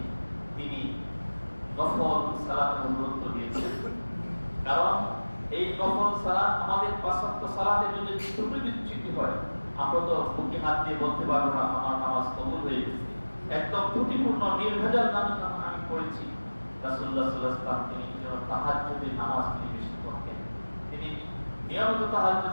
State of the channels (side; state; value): both; inverted; correlation -1.00